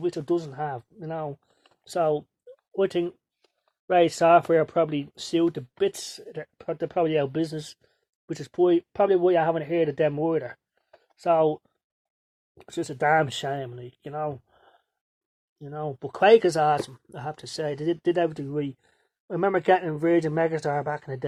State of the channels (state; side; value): identical; both; correlation 1.00